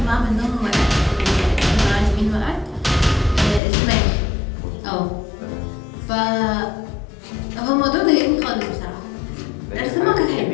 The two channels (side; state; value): right; drops out; at 3.6 s